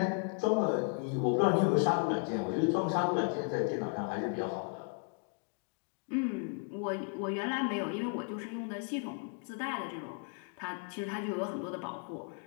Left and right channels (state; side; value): quieter; right; 38.8 dB